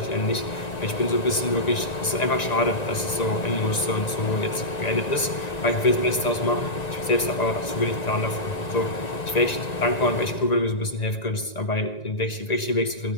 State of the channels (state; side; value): late; right; 1.9 ms